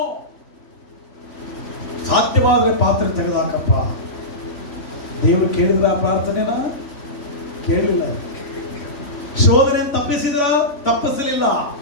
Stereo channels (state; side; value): late; right; 3.5 ms